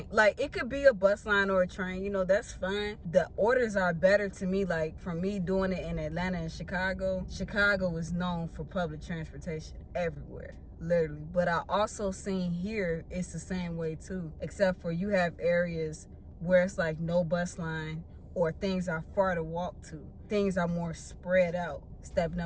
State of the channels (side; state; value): both; identical; correlation 1.00